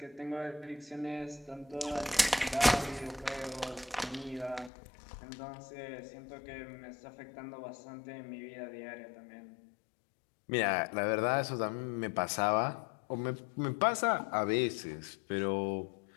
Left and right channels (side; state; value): right; drops out; at 4.7 s